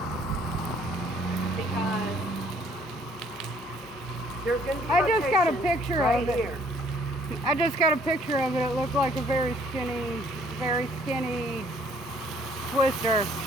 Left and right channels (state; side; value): normal; both; correlation 0.61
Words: Because there's going to be I just got a picture right of it. here. I just got a picture of it. It looked like a very skinny twister.